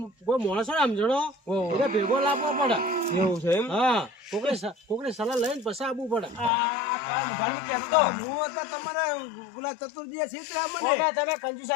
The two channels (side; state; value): right; drops out; at 6.5 s